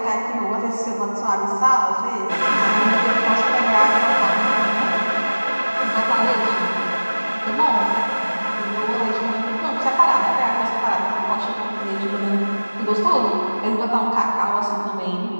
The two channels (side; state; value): both; inverted; correlation -1.00